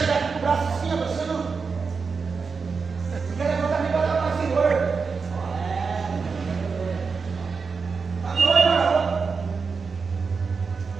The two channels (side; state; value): left; quieter; 5.1 dB